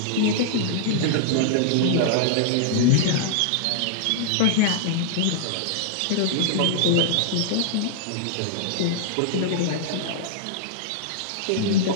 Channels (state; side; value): different; both; correlation -0.01